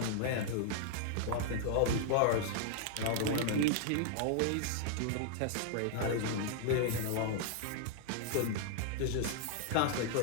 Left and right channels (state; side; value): different; both; correlation -0.01